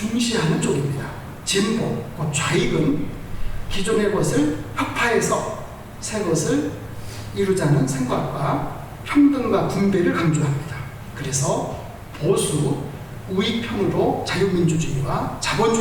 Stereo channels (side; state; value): both; identical; correlation 1.00